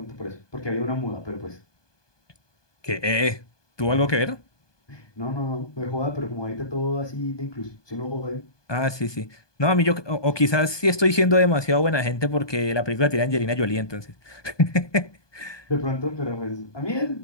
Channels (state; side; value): late; right; 1.2 ms